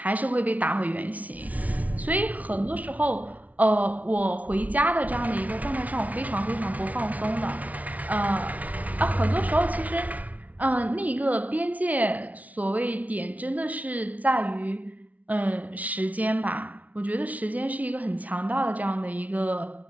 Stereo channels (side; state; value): left; late; 0.071 ms